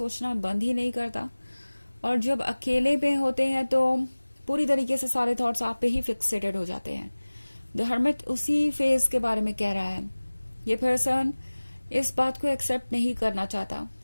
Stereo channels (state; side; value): inverted; both; correlation -1.00